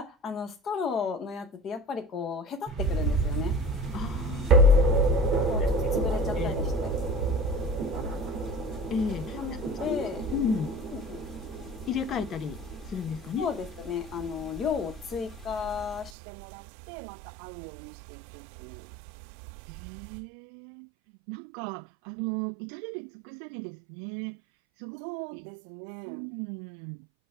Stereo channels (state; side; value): drops out; left; at 16.1 s